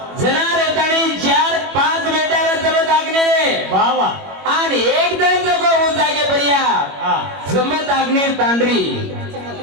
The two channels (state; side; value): late; left; 21 ms